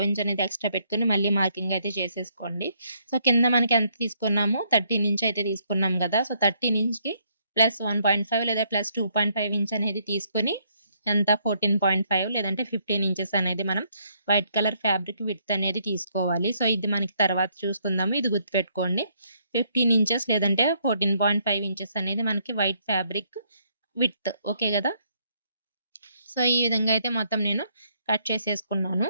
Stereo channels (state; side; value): inverted; both; correlation -0.71